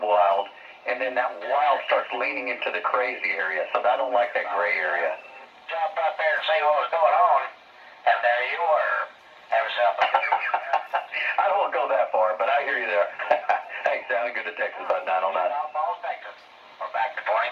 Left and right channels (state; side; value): identical; both; correlation 1.00